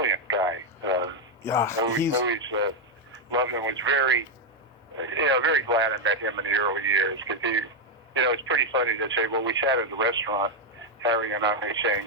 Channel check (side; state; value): both; normal; correlation 0.02